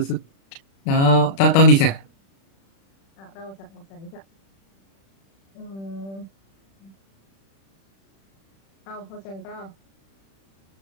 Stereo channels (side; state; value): right; late; 36 ms